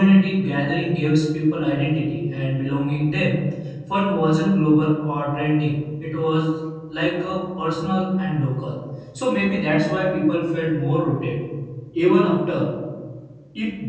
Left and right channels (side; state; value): both; identical; correlation 1.00